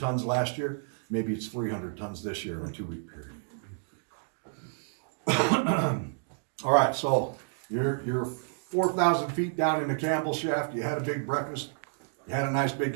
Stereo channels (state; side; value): silent; left; digital silence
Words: last year. Maybe it's 300 tons this year in a 2-week period. All right, so you're 4,000 feet down in the Campbell shaft. You had a big breakfast. You had a nice